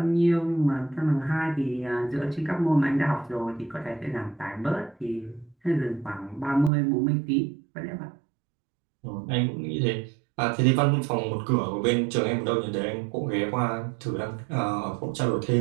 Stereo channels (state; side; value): drops out; left; at 6.7 s